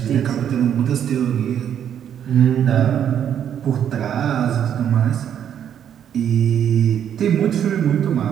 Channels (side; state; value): left; quieter; 9.3 dB